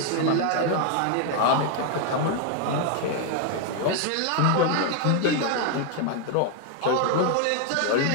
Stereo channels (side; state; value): both; different; correlation 0.00